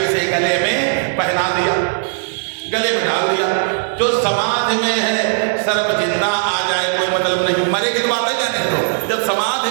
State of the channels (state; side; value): silent; left; 68 dB below the other